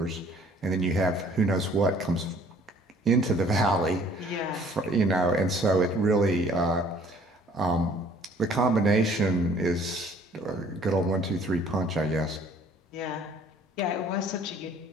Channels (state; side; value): normal; both; correlation 0.56